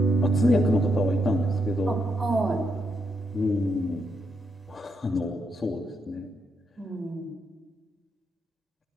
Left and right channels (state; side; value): normal; both; correlation 0.80